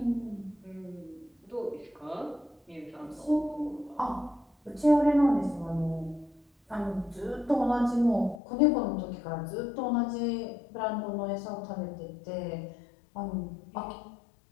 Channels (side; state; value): right; drops out; at 8.4 s